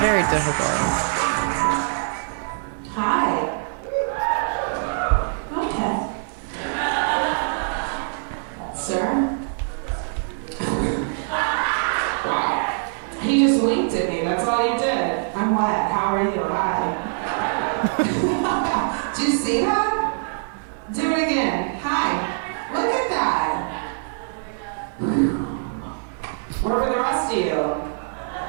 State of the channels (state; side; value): silent; left; digital silence